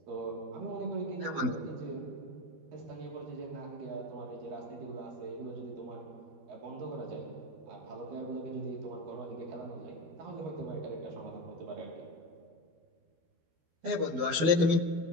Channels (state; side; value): late; left; 12 ms